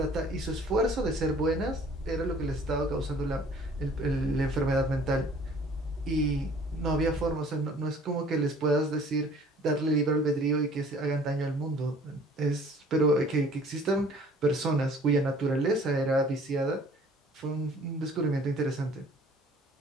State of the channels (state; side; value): normal; both; correlation 0.53